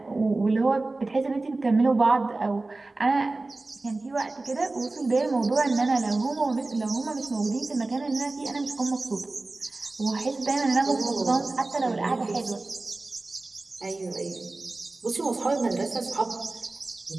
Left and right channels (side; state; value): left; quieter; 3.2 dB